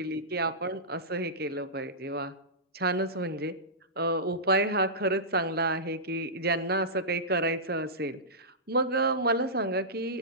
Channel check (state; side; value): normal; both; correlation -0.16